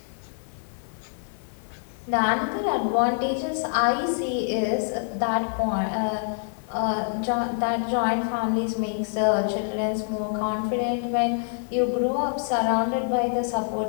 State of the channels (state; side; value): silent; right; digital silence